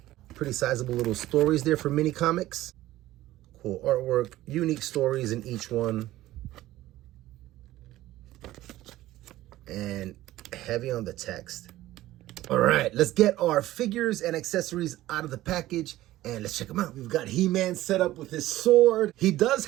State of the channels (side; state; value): left; quieter; 15.6 dB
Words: Pretty sizable little stories there for mini comics. Cool artwork. Unique stories in each one. And heavy on the text. All right, let's get our figures and accessories out of the package and let's check them out. We've got He-Man set up with his sword. He does